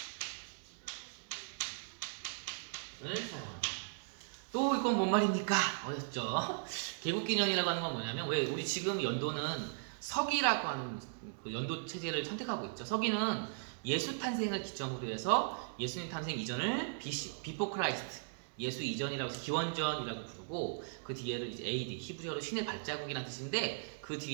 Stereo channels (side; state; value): left; silent; digital silence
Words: 을 사용합니다. 또 이건 뭔 말입니까? 어렵죠? 개국기년이라고 하는 건 뭐냐면, 왜 우리 지금 연도는 서기라고 하는 그 연도 체제를 선택하고 있죠. 서기는 예수 탄생을 기점으로 해서 예수님 탄생 이전을 비포 크라이스트, 예수 이전이라고 해서 기원전이라고 부르고, 그 뒤에를 이제 AD, 히브리어로 신의 발자국이라는 뜻인데, 그